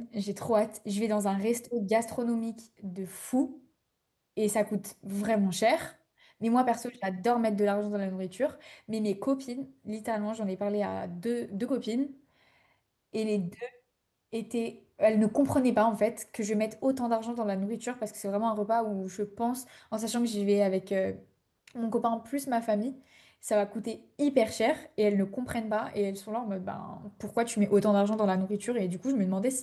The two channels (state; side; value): identical; both; correlation 1.00